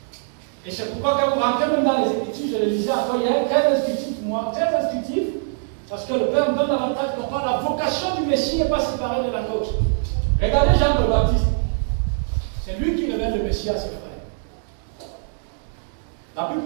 Et c'est pourquoi quand vous rentrez même dans les Écritures, je le disais encore hier, très instructif pour moi, très instructif, parce que le Père me donne l'avantage de comprendre la vocation du Messie n'est pas séparée de la nôtre. Regardez Jean le Baptiste. C'est lui qui révèle le Messie à ses frères. La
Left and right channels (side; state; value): left; silent; digital silence